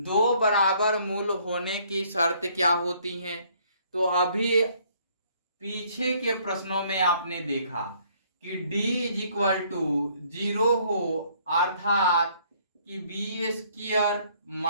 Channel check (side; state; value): both; inverted; correlation -0.63